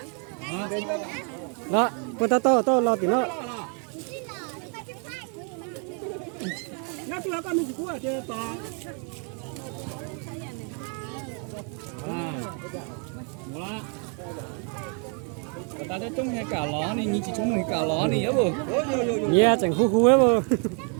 Đó, con tao lo tí nó. Nhá tôi con mình của chơi to. Voilà. Ta thấy trông hay cả ló này, nhìn chỉ trông hay cả ló này á bồ. Yeah, chẳng khu ấy bồ.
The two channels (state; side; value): quieter; left; 39.8 dB